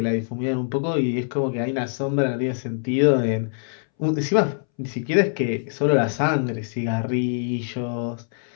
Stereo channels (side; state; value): right; silent; 63 dB below the other